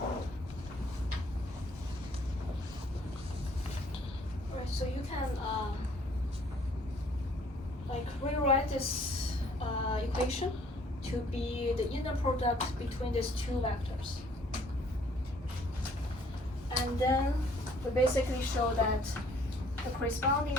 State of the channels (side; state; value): both; normal; correlation 0.60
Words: Right, so you can like rewrite this equation to be the inner product between these two vectors. And then we basically show that the corresponding